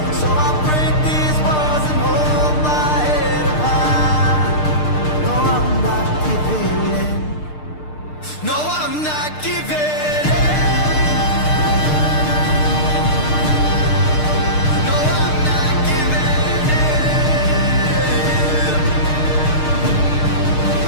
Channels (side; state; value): right; late; 6.6 ms